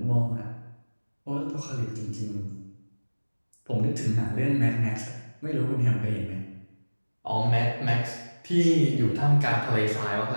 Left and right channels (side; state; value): both; inverted; correlation -1.00